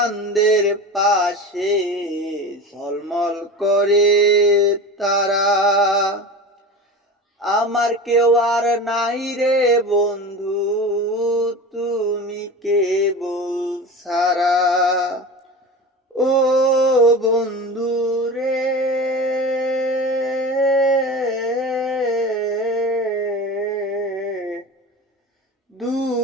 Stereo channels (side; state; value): both; normal; correlation 0.31